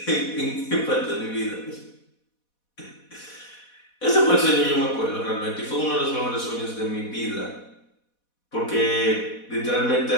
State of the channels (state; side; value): late; right; 4.1 ms